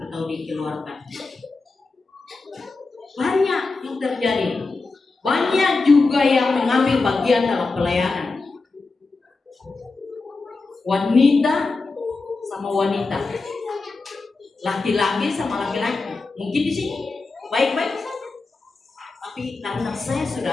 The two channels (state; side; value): quieter; right; 3.8 dB